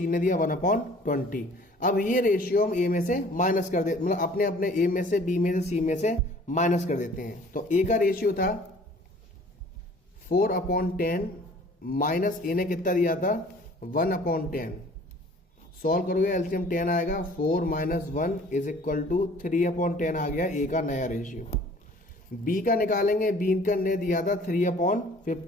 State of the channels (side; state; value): both; normal; correlation 0.51